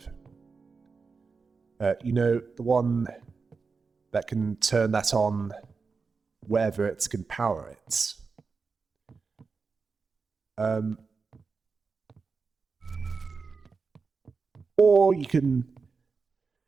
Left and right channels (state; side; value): quieter; left; 4.8 dB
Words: You know, the one that can turn that on wherever it can power it. Or you can